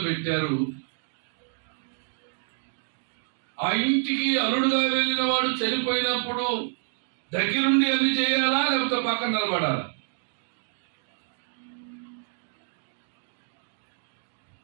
పెట్టారు. ఆ ఇంటికి అల్లుడుగా వెళ్ళిన వాడు చనిపోయినప్పుడు దగ్గరుండి అన్ని చేయాలా లేకపోతే పక్కన నిలబడాలా?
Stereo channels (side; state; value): left; silent; 57 dB below the other